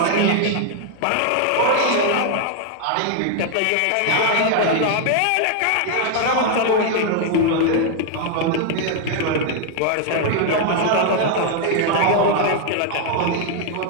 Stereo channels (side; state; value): both; different; correlation 0.00